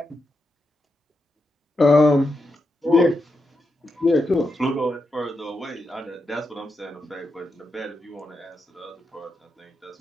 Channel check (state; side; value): normal; both; correlation 0.86